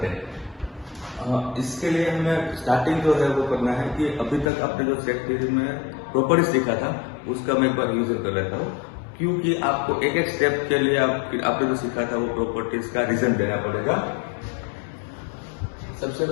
है। इसके लिए हमें स्टार्टिंग जो है वो करना है कि अभी तक आपने जो सेट थ्योरी में प्रॉपर्टीज सीखा था उसका मैं एक बार रिविजन कर लेता हूँ, क्योंकि आपको एक एक स्टेप के लिए आपने जो सीखा था वो प्रॉपर्टीज का रीजन देना पड़ेगा। सबसे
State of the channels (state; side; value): drops out; right; at 4.5 s